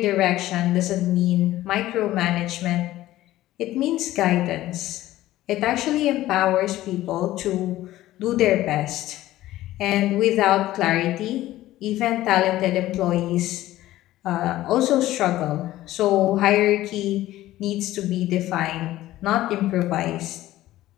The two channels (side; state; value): right; quieter; 15.3 dB